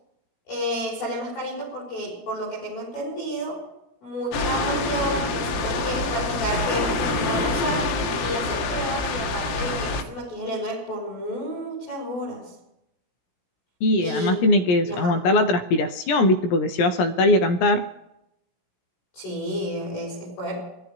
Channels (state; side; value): late; right; 17 ms